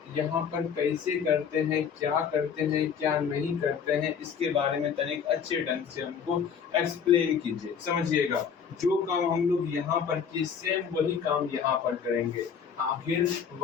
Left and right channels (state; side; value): quieter; right; 7.1 dB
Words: यहाँ पर कैसे करते हैं, क्या करते हैं, क्या नहीं करते हैं, इसके बारे में तनिक अच्छे ढंग से हमको एक्सप्लेन कीजिए, समझिएगा। जो काम हम लोग यहाँ पर किए सेम वही काम यहाँ पर करेंगे। आखिर